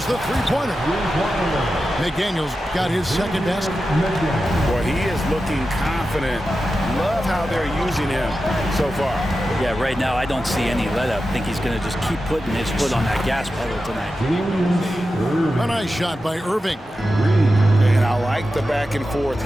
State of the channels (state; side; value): normal; both; correlation 0.91